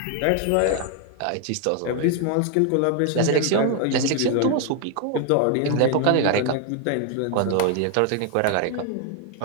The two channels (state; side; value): different; both; correlation 0.01